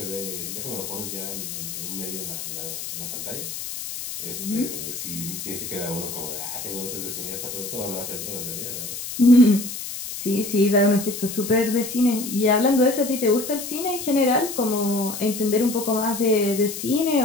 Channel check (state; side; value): noise; left; hiss, 7 dB below the sound